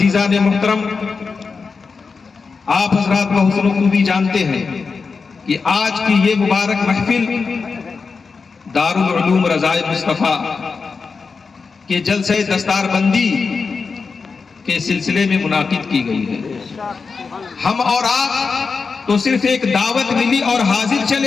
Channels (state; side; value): quieter; right; 4.9 dB